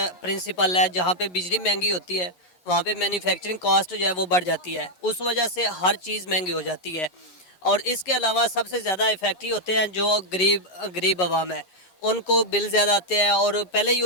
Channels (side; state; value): right; late; 11 ms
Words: प्रिंसिपल है, जहाँ पे बिजली महंगी होती है वहाँ पे मैन्युफैक्चरिंग कॉस्ट जो है वो बढ़ जाती है, उस वजह से हर चीज़ महंगी हो जाती है। और इसके अलावा सबसे ज़्यादा इफेक्टिव होते हैं जो गरीब आवाम है, उनको बिल ज़्यादा आते हैं, और पहले ही